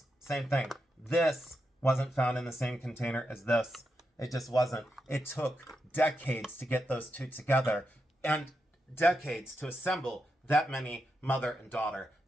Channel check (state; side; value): normal; both; correlation 0.85